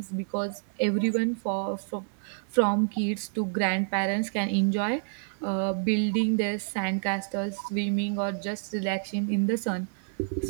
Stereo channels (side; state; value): left; silent; digital silence